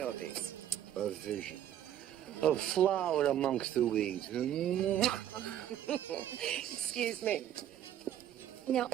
A vision. A flower amongst the weeds. Excuse me. Now,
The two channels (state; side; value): quieter; left; 11.2 dB